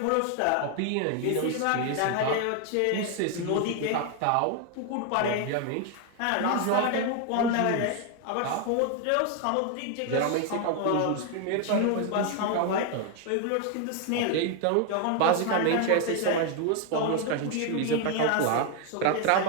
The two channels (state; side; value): different; both; correlation 0.01